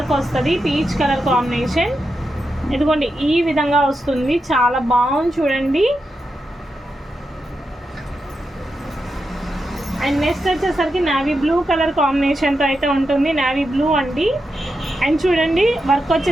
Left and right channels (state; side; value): normal; both; correlation 0.87